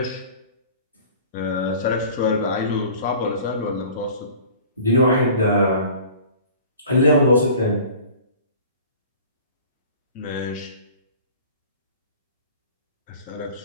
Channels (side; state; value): both; inverted; correlation -0.45